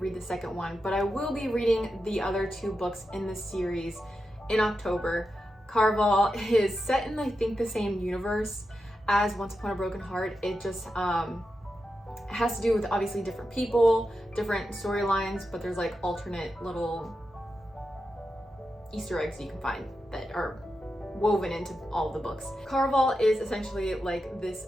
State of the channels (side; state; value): both; normal; correlation 0.89